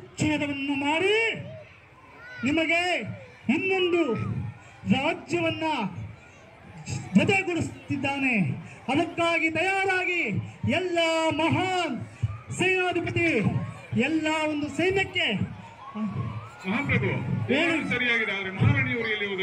ಮಾಡಿ ನಿಮಗೆ ಇನ್ನೊಂದು ರಾಜ್ಯವನ್ನ ಜೊತೆಗೂಡಿಸುತ್ತಿದ್ದಾನೆ. ಅದಕ್ಕಾಗಿ ತಯಾರಾಗಿ ಎಲ್ಲ ಮಹಾನ್ ಸೇನಾಧಿಪತಿ ಎಲ್ಲ ಒಂದು ಸೈನ್ಯಕ್ಕೆ. ಮಹಾಪ್ರಭು, ಸರಿಯಾಗಿದೆ. ಆದ್ರೆ ಮಹಾರಾಣಿಯವರು ಎಲ್ಲಿ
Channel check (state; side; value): identical; both; correlation 1.00